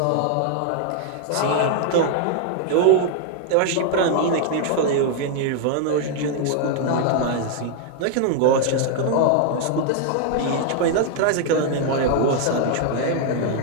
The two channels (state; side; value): different; both; correlation 0.00